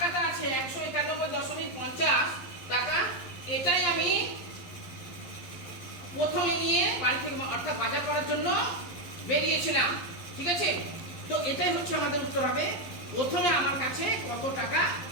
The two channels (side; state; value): right; late; 11 ms